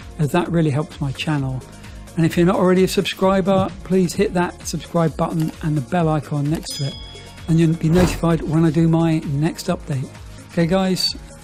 as that really helps my channel. And if you're not already a subscriber, please hit that subscribe button and the bell icon next to it, and you'll be notified when I do my next update. Okay guys,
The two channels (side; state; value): both; identical; correlation 1.00